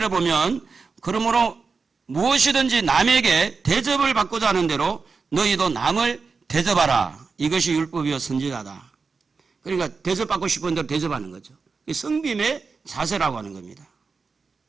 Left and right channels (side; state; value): left; quieter; 4.7 dB